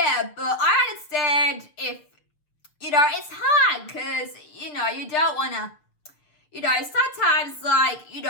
understand if, it's hard, because, you don't want to, sometimes, like,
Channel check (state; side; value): late; right; 6.7 ms